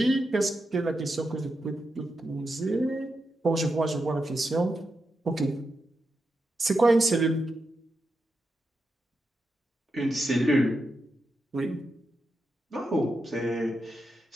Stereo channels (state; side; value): normal; both; correlation 0.87